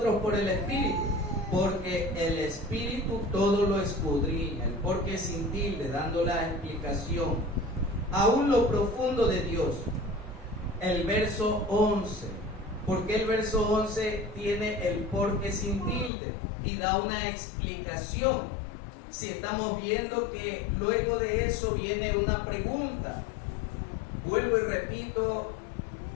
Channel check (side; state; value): right; drops out; at 16.1 s